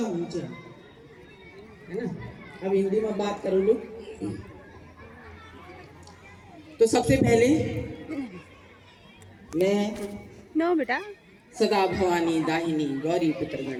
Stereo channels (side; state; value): both; identical; correlation 1.00